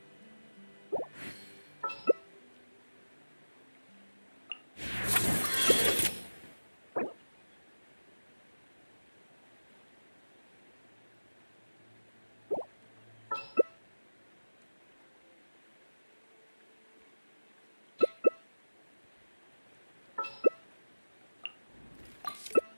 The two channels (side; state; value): both; inverted; correlation -1.00